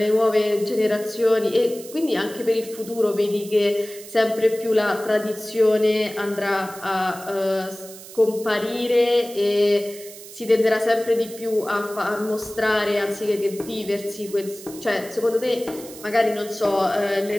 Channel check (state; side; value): noise; right; hiss, 16 dB below the sound